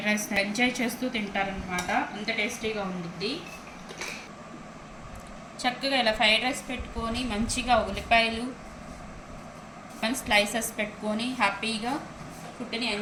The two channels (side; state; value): both; identical; correlation 1.00